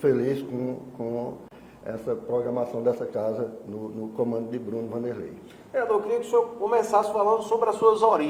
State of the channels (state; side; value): identical; both; correlation 1.00